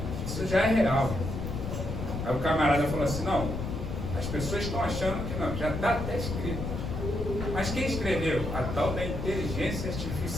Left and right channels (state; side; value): noise; left; rumble, 4 dB below the sound